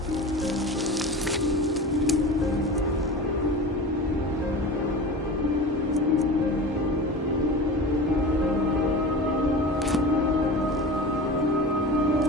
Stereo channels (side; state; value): both; normal; correlation 0.31